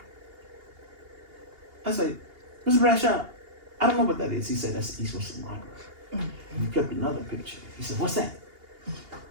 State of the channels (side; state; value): left; late; 2.8 ms